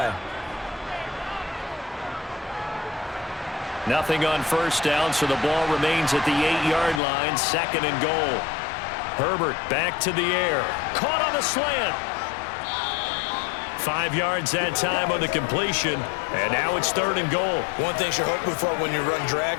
Nothing on 1st down, so the ball remains at the 8-yard line. 2nd and goal. Herbert back to the air. Caught on the slant. 5 yards that time on the completion, and now it's 3rd and goal. One thing you're hoping for when you run drag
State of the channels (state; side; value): drops out; right; at 7.0 s